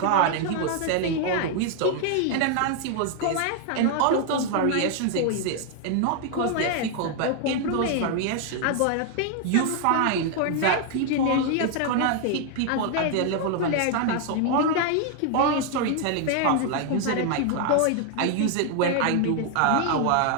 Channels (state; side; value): different; both; correlation 0.00